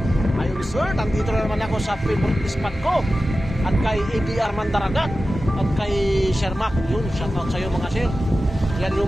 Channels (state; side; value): normal; both; correlation 0.94